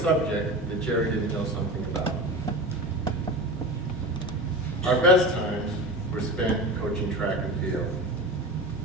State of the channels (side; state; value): both; normal; correlation 0.29